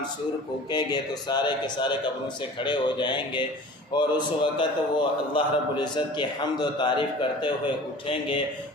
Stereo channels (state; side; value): normal; both; correlation 0.42